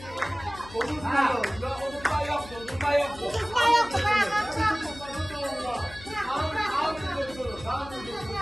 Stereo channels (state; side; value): noise; left; hum, 17 dB below the sound